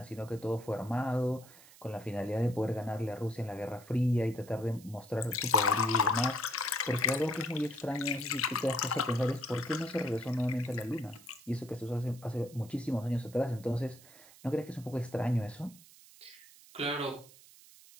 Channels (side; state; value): right; noise; hiss, 22 dB below the sound